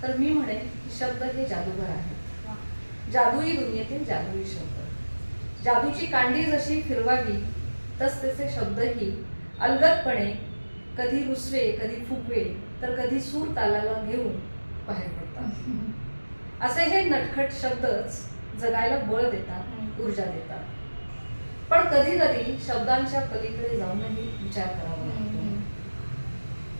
तर मी म्हणेन की शब्द हे जादूगार आहेत. जादुई दुनियेतील जादुई शब्द. जादूची कांडी जशी फिरवावी तसतसे शब्दही अलगदपणे कधी रुसवे, कधी फुगवे तर कधी सूर तालाला घेऊन बाहेर पडतात. असे हे नटखट शब्दच जगायला बळ देतात, ऊर्जा देतात. पण कधी कधी शब्दांच्या पलीकडे जाऊनही विचार करावा लागतो.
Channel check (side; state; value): both; inverted; correlation -1.00